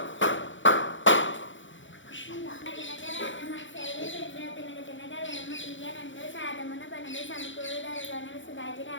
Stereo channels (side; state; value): right; late; 0.55 ms